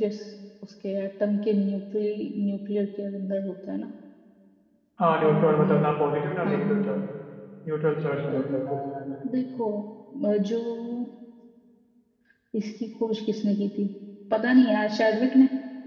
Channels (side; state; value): both; identical; correlation 1.00